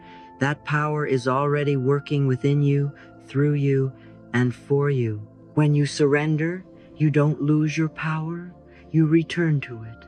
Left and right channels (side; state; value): both; identical; correlation 1.00